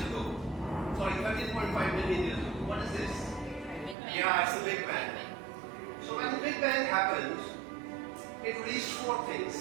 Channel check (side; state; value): left; drops out; at 4.0 s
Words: ago. Sorry, 13.5 million years ago. What is this? Yeah, it's the Big Bang. So when the Big Bang happened, it released four things: